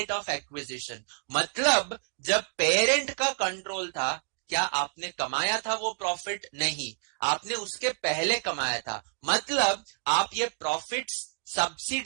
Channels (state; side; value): silent; left; digital silence